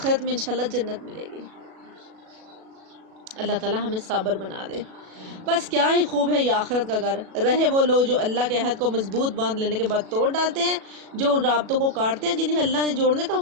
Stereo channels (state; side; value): late; left; 37 ms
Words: میں انشاءاللہ جنت ملے گی۔ اللہ تعالیٰ ہمیں صابر بنا دے۔ بس کیا ہی خوب ہے یہ آخرت کا گھر۔ رہے وہ لوگ جو اللہ کے عہد کو مضبوط باندھ لینے کے بعد توڑ ڈالتے ہیں، جو ان رابطوں کو کاٹتے ہیں جنہیں اللہ نے جوڑنے کا